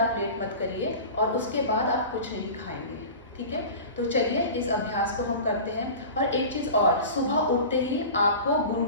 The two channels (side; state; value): both; inverted; correlation -0.35